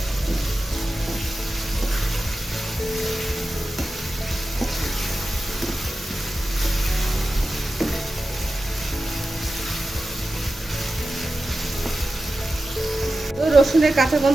তো রসুনের কাঁচা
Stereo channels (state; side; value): normal; both; correlation 0.93